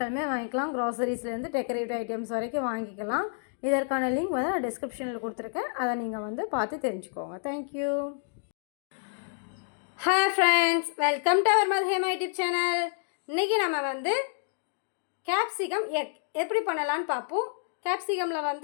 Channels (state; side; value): silent; right; digital silence